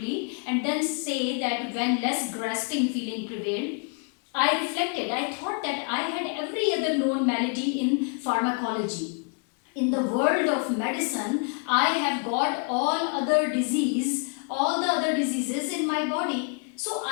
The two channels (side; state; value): right; quieter; 38.4 dB